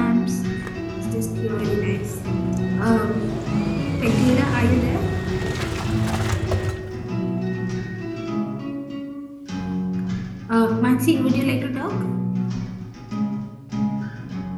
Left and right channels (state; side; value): identical; both; correlation 1.00